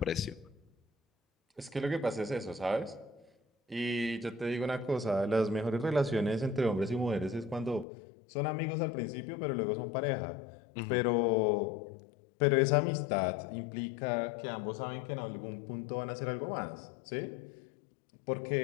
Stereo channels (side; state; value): right; drops out; at 7.9 s